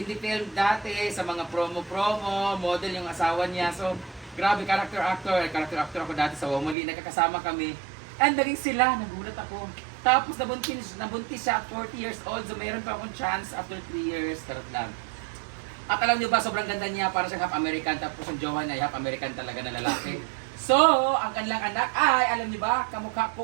film dati, sa mga promo-promo, model yung asawa niya. So, grabe, character actor ako dati sa Womoli. Nagkakasama kami. And naging sila, nagulat ako. Tapos nabuntis siya at 40 years old. So mayroon pa akong chance after 3 years. Karot lang. At alam niyo ba, sobrang ganda niya. Para siyang half American. Tapos yung jowa niya, half American talaga na lalaki. So, ang kanilang anak ay, alam niyo ba, kamukha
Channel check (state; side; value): drops out; left; at 6.8 s